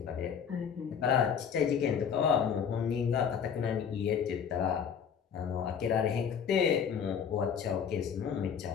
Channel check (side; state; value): right; quieter; 7.4 dB